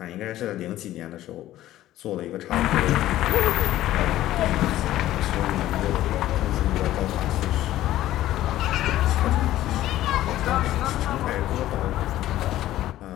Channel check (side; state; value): right; quieter; 14.2 dB